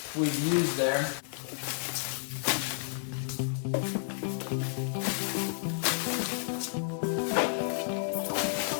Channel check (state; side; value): silent; right; digital silence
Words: we've used there.